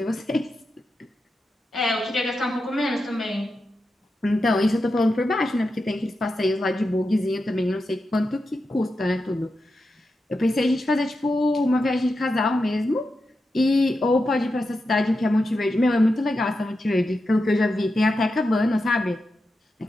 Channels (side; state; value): both; normal; correlation 0.89